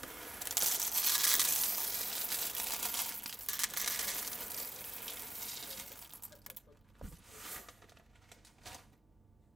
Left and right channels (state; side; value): normal; both; correlation 0.93